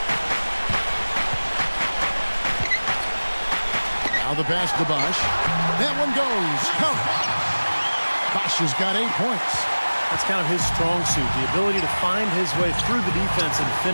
Now the pass to Bosch. That one goes. Count. Bosch has got 8 points. That's kind of his strong suit, the ability to find his way through the defense and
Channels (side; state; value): both; inverted; correlation -1.00